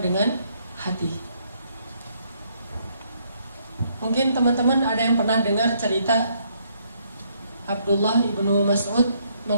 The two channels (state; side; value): inverted; both; correlation -0.70